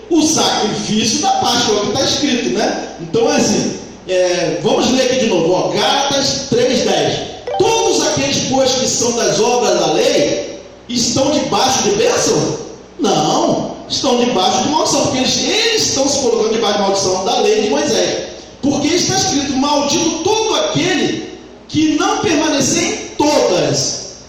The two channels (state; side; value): identical; both; correlation 1.00